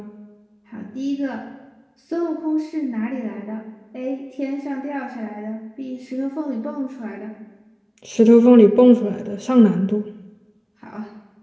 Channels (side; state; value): both; identical; correlation 1.00